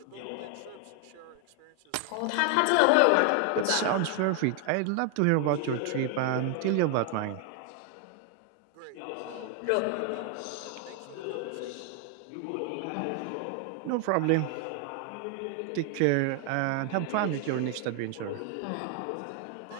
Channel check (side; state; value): both; different; correlation 0.00